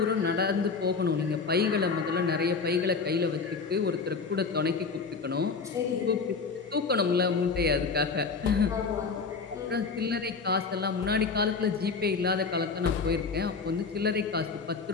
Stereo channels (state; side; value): quieter; right; 4.8 dB